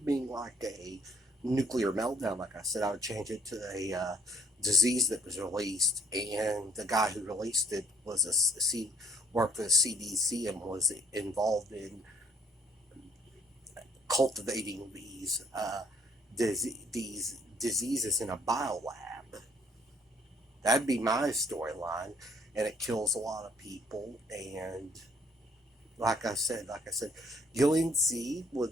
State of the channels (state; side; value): normal; both; correlation 0.62